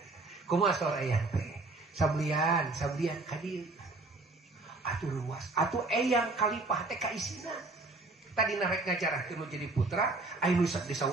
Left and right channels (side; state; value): left; quieter; 3.3 dB